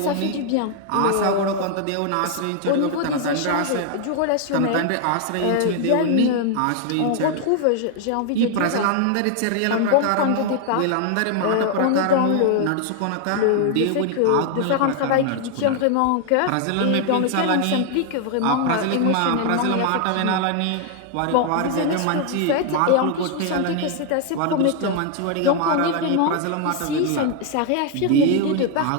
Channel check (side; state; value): both; different; correlation 0.00